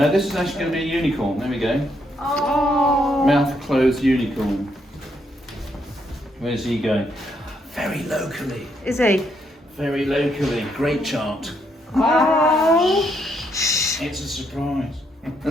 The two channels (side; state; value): both; normal; correlation 0.75